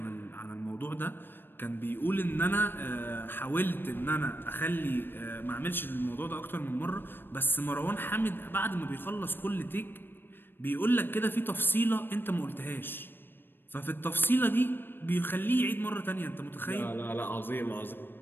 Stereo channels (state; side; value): late; right; 0.098 ms